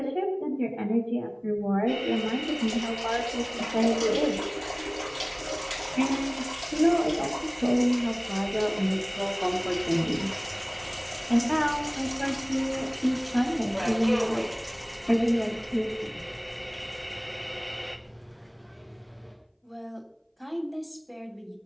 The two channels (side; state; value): both; identical; correlation 1.00